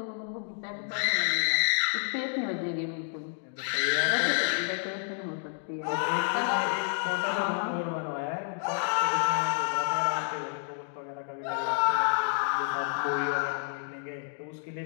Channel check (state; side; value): silent; right; 57 dB below the other